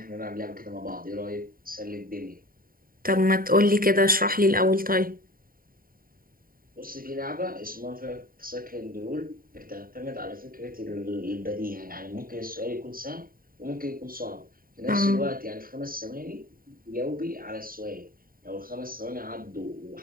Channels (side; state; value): left; late; 0.42 ms